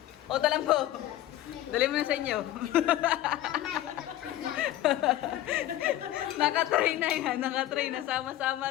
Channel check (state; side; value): quieter; right; 13.9 dB